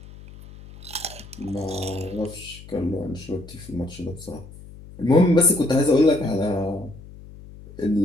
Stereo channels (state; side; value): noise; left; hum, 18 dB below the sound